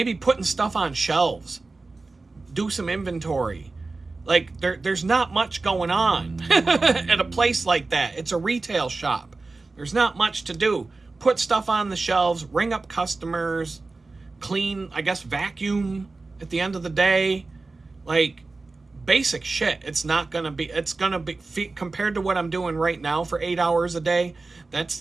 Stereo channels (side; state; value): left; quieter; 3.6 dB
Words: putting stuff on shelves, do some inventory. Like, there's not much going on at a place like that. It's a retail shop. There's not much to do. Put stuff on the shelves, ring up customers, clean, I guess, vacuum at the end of the day. Like, basic shit. It's going to be, compared to what I'm doing right now for 8 hours a day,